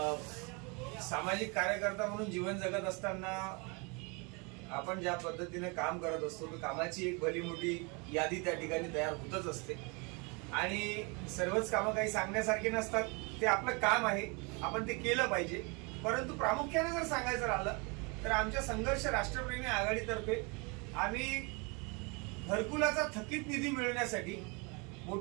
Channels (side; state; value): left; quieter; 30.8 dB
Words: सामाजिक कार्यकर्ता म्हणून जीवन जगत असताना आपण ज्या पद्धतीने काम करत असतो तर कामाची एक भली मोठी यादी त्या ठिकाणी तयार होतच असते आणि सर्वच कामं काही सांगण्यासारखी नसतात. ते आपलं काम आहे, आपण ते केलं पाहिजे. परंतु प्रामुख्याने जर सांगायचं राहिलं तर आमच्या संघर्ष राष्ट्रप्रेमी आघाडीतर्फे आम्ही घरकुलाचा थकीत निधी मिळवण्यासाठी